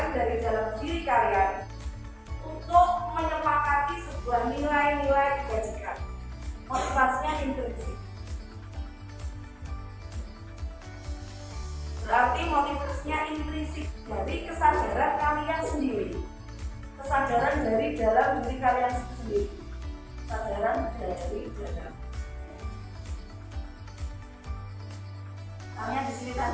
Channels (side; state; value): both; identical; correlation 1.00